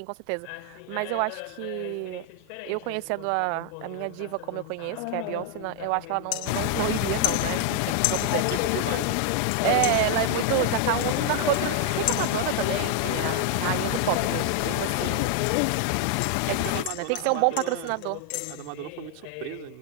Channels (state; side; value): different; both; correlation 0.00